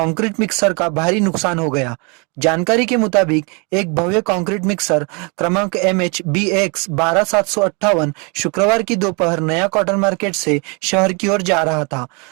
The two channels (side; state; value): left; quieter; 32.8 dB